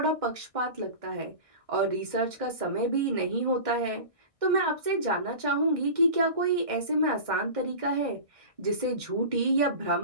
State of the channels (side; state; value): left; late; 1.6 ms